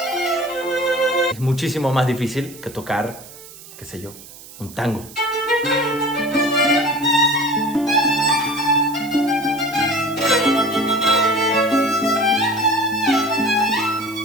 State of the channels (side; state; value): right; noise; hiss, 18 dB below the sound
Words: es muchísimo más difícil que tocar, qué sé yo, un tango.